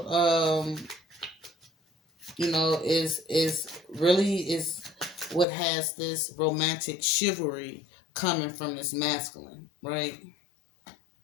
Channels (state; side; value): drops out; right; at 5.5 s